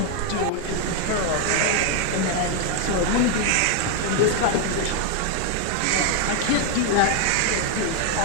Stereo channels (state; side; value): different; both; correlation 0.00